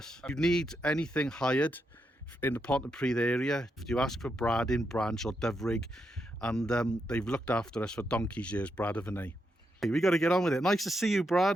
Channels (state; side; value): normal; both; correlation 0.82